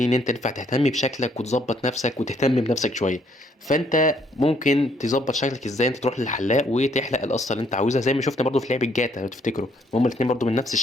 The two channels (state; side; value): normal; both; correlation 0.68